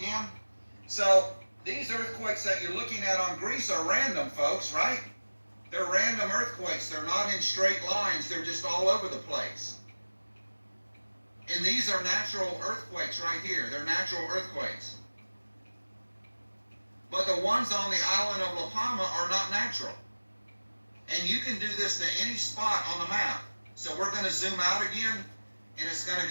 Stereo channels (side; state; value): both; inverted; correlation -1.00